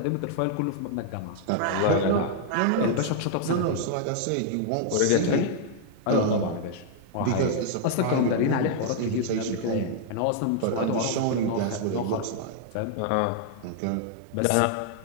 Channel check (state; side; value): different; both; correlation -0.01